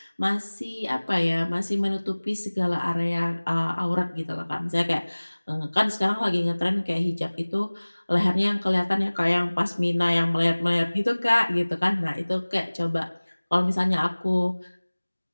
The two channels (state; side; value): inverted; both; correlation -1.00